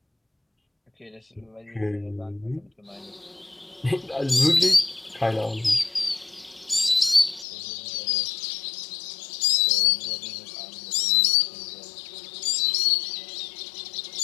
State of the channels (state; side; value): drops out; right; at 7.5 s